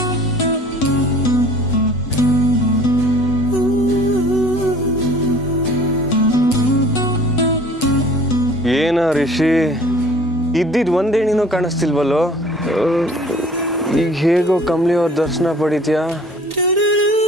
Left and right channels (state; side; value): normal; both; correlation 0.49